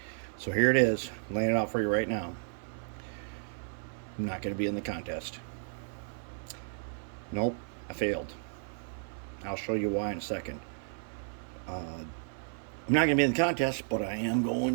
So here it is, I'm laying it out for you right now. I'm not going to be in the contest. Nope, I failed. I'll show you why in a second. I'm not going to be in the contest, but I am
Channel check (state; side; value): silent; left; 56 dB below the other